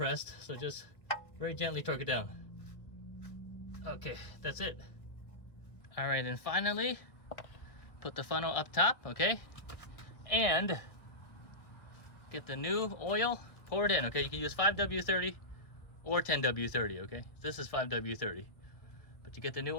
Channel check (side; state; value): right; late; 1.4 ms